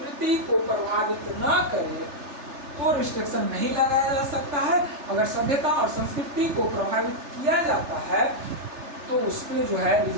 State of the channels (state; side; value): late; left; 3.4 ms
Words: को प्रभावित न करे तो रिस्ट्रिक्शन नहीं लगाया जा सकता है। अगर सभ्यता और संस्कृति को प्रभावित किया जाता है तो उस पर जो है